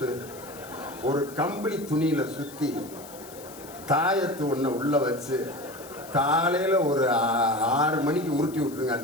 ஒரு கம்பளி துணியில் சுற்றி தாயத்து ஒன்றை உள்ளே வச்சு காலையில் ஒரு 6 மணிக்கு உருட்டி விட்டுருங்க.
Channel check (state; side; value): noise; left; hiss, 18 dB below the sound